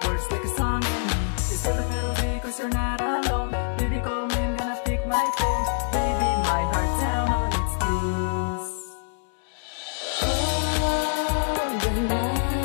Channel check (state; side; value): silent; right; digital silence